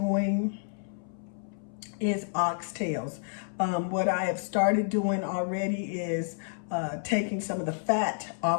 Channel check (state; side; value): silent; right; 58 dB below the other